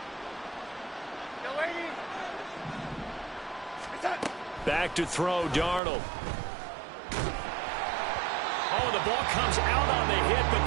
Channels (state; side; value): drops out; left; at 5.8 s